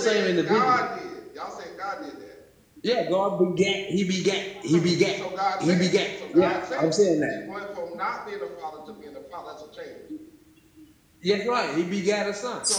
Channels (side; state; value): both; identical; correlation 1.00